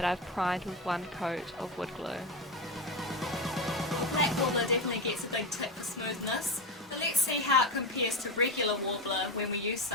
I've primed with one coat of wood glue. Black Worbla definitely gets a big tip for smoothness, but let's see how it compares to regular Worbla when we use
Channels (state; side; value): normal; both; correlation 0.17